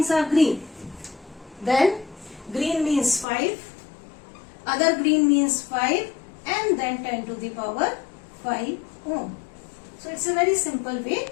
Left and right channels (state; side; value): drops out; right; at 3.2 s